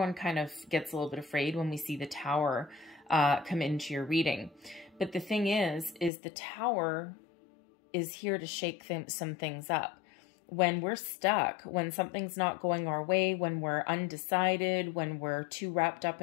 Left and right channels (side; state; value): right; drops out; at 6.1 s